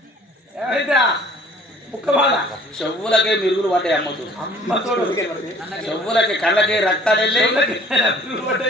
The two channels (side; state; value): both; normal; correlation 0.53